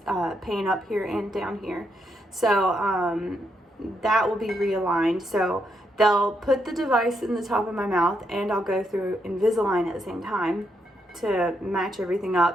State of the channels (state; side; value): normal; both; correlation 0.79